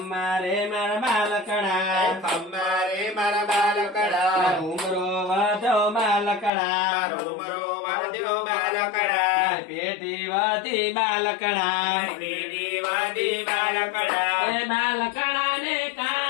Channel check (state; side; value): drops out; right; at 6.5 s